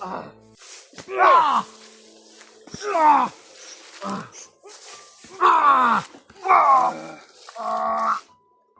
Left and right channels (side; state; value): both; identical; correlation 1.00